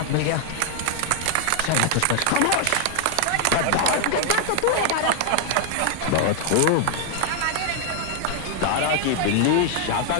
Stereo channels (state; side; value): different; both; correlation 0.00